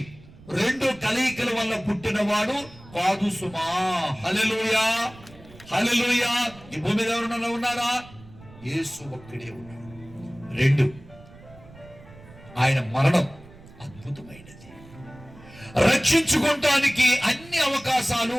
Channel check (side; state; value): right; noise; rumble, 21 dB below the sound